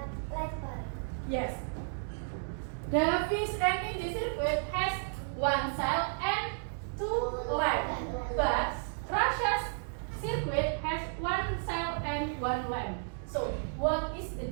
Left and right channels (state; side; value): silent; left; digital silence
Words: Yes. Davi's and Mindy circuit has one cell and two lamps. But